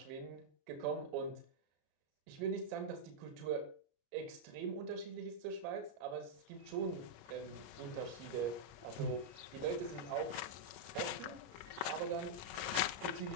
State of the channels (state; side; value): late; left; 34 ms